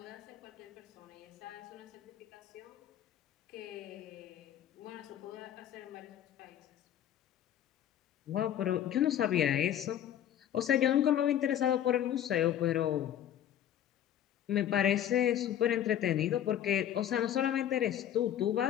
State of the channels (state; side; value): quieter; right; 10.8 dB